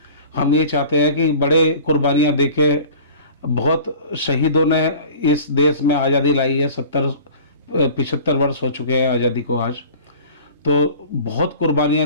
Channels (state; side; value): inverted; both; correlation -0.42